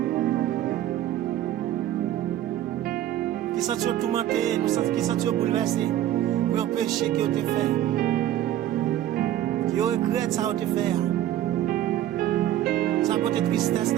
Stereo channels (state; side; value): quieter; left; 12.4 dB